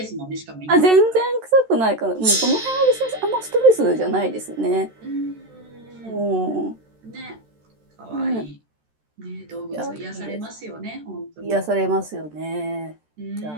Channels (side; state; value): left; late; 13 ms